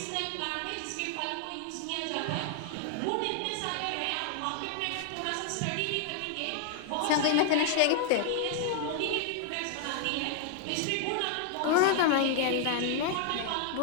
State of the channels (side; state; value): both; different; correlation 0.00